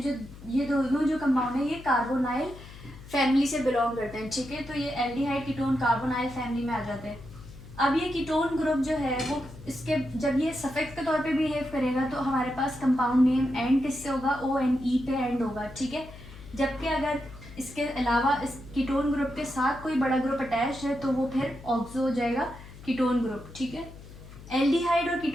ये दोनों जो कंपाउंड है ये कार्बोनाइल फैमिली से बिलोंग करते हैं, ठीक है, तो ये एल्डिहाइड कीटोन कार्बोनाइल फैमिली में आ जाते हैं। अब ये कीटोन ग्रुप जो है वो इसके जब ये सफिक्स के तौर पे बिहेव करेगा तो हमारे पास कंपाउंड नेम एंड किससे होगा, ONE पे एंड होगा, ठीक है। जबकि अगर इसके अलावा इस कीटोन ग्रुप के साथ कोई बड़ा ग्रुप अटैच है तो वो फिर ऑक्सो हो जाएगा कीटोन ग्रुप, ठीक है। एल्डिहाइड और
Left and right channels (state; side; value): noise; left; hum, 17 dB below the sound